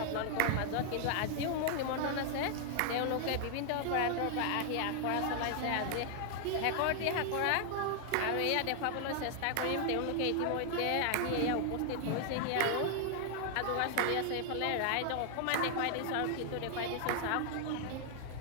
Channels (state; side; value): different; both; correlation 0.00